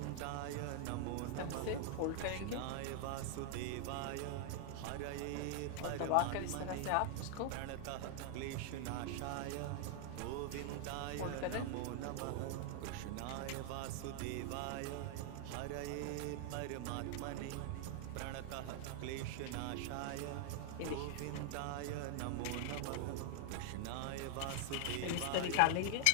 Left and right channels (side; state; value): both; different; correlation 0.00